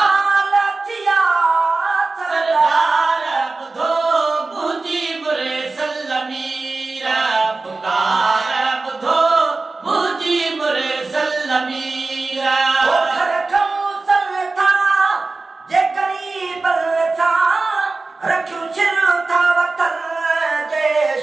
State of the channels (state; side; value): quieter; left; 3.6 dB